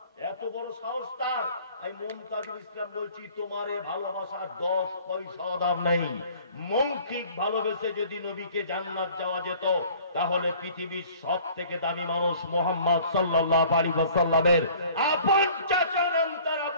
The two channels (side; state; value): both; inverted; correlation -0.51